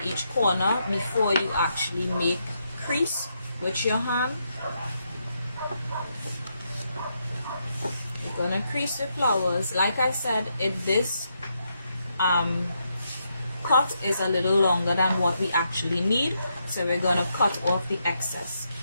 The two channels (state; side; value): inverted; both; correlation -0.80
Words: each corner before you actually make crease with your hand. You're gonna crease the flowers. Like I said, this cut is a little longer than what we actually need, so we're gonna cut off the excess,